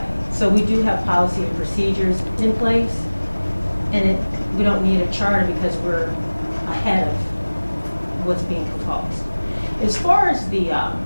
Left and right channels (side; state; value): both; inverted; correlation -1.00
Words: So we do have policy and procedures in place, and we don't need a charter because we're ahead of what's being proposed. As far as the